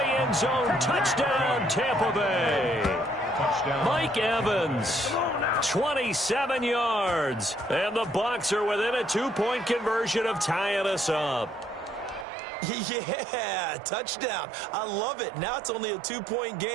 end zone. Touchdown, Tampa Bay. Touchdown. Mike Evans, 27 yards. And the Bucs are within a 2-point conversion of tying us up. Yeah, touchdown. I love it. Now it's only a 2-point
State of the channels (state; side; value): drops out; left; at 12.2 s